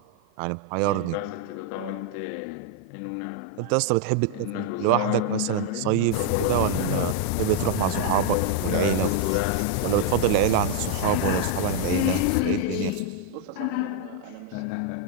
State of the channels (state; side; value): different; both; correlation 0.00